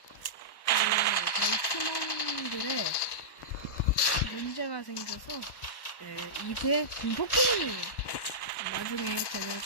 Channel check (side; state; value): right; late; 1.1 ms